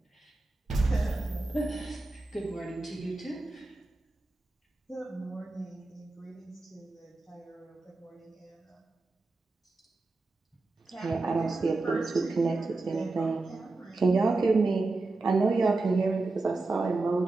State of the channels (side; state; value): left; quieter; 3.4 dB